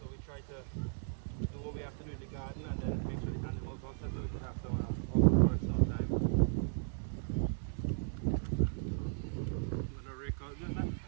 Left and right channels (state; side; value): silent; left; digital silence